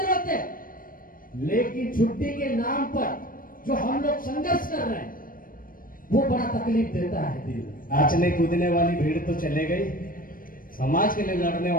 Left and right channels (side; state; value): right; late; 0.41 ms